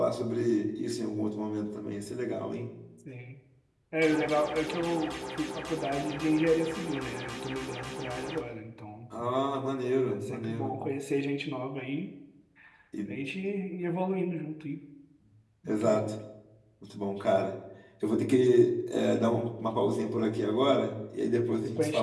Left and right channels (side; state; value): both; identical; correlation 1.00